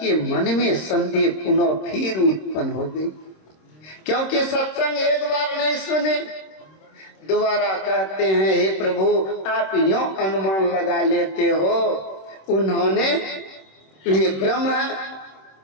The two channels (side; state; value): right; late; 26 ms